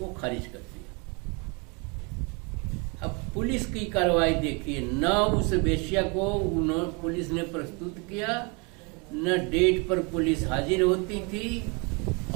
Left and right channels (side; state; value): left; quieter; 31.4 dB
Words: खारिज कर दिया। अब पुलिस की कार्रवाई देखिए, न उस वेश्या को पुलिस ने प्रस्तुत किया, न डेट पर पुलिस हाजिर होती थी,